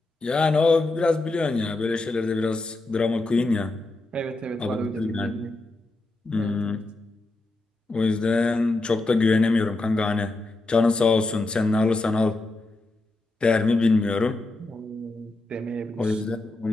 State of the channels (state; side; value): quieter; right; 3.0 dB